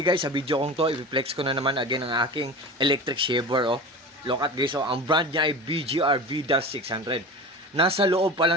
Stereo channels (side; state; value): both; normal; correlation 0.32